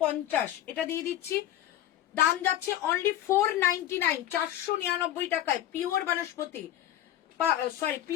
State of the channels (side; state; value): right; quieter; 12.5 dB